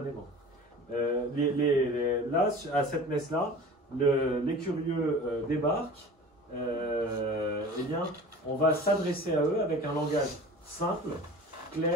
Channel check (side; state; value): both; normal; correlation 0.39